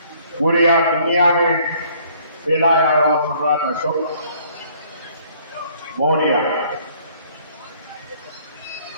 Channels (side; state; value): both; inverted; correlation -0.60